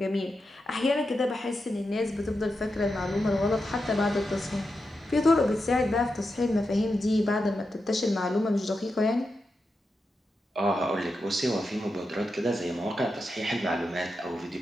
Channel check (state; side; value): normal; both; correlation 0.88